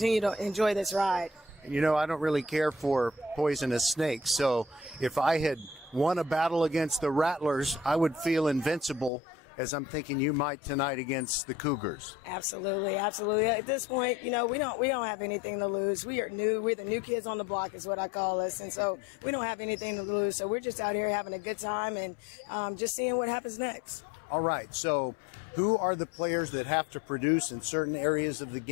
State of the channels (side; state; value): right; drops out; at 9.1 s